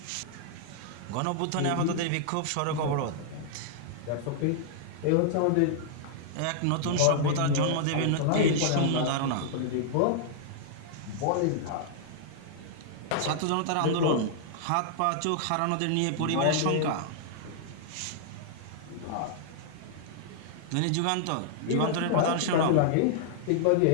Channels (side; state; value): both; different; correlation -0.01